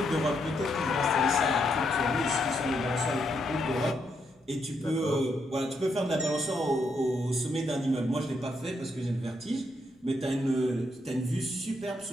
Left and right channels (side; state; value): both; normal; correlation 0.78